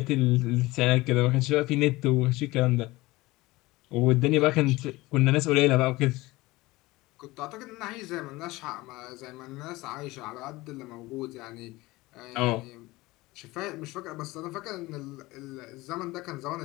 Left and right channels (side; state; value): right; quieter; 20.4 dB